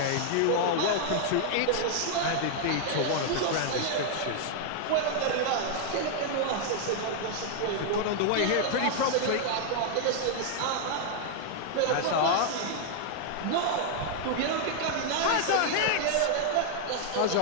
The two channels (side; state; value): both; different; correlation 0.00